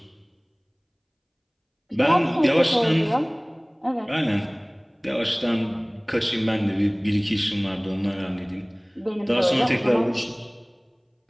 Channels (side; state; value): both; identical; correlation 1.00